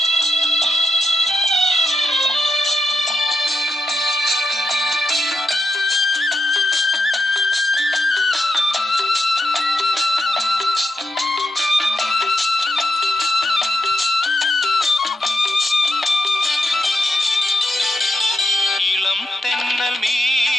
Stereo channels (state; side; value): normal; both; correlation 0.85